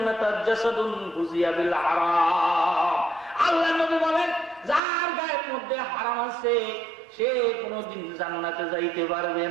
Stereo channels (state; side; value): drops out; left; at 4.8 s